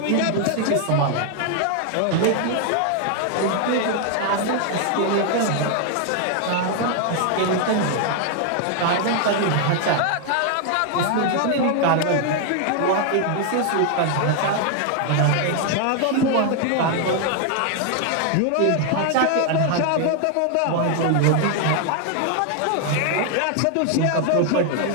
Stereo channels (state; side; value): different; both; correlation 0.00